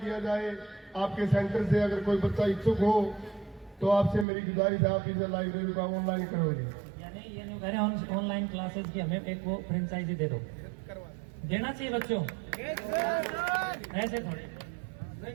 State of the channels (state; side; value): drops out; left; at 4.2 s